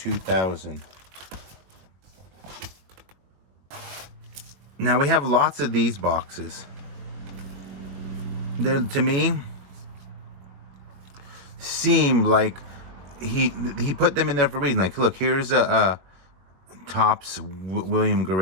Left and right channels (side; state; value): left; late; 22 ms